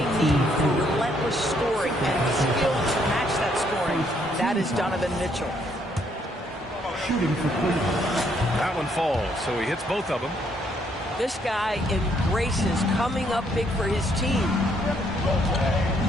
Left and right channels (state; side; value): normal; both; correlation 0.70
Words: need for relentless scoring and skill to match that scoring. That is Donovan Mitchell. Shooting for Cleveland. That one falls, so he hits both of them. This guy embraces coming up big for his team.